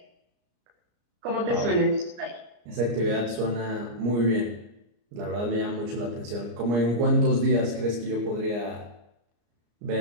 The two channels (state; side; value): late; left; 34 ms